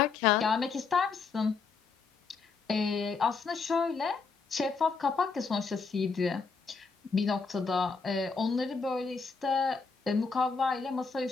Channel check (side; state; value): right; quieter; 4.9 dB